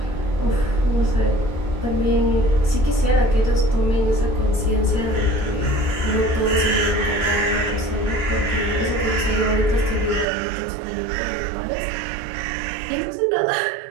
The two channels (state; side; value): drops out; left; at 10.2 s